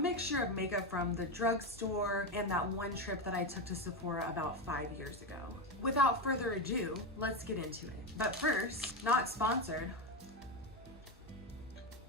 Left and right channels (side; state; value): both; normal; correlation 0.13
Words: of makeup from the drugstore and that one trip that I took to Sephora about 5 years ago. Without further ado, let's get into it. But first, not sponsored,